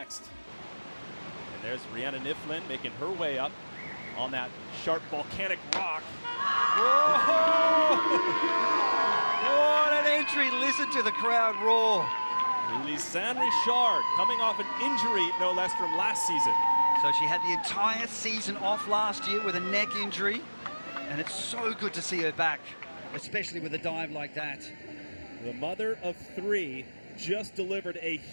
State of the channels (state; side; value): inverted; both; correlation -1.00